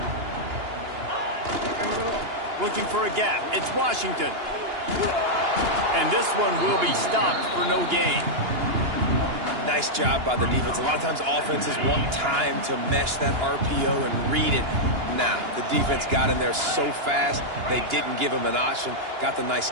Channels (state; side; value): late; left; 2.9 ms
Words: Looking for a gap. It's Washington. And this one will be stopped for no gain. Nice job by the defense. A lot of times offenses want time to mesh that RPO and read it. Nah, the defense got in there so fast, they didn't give him an option. Got the nice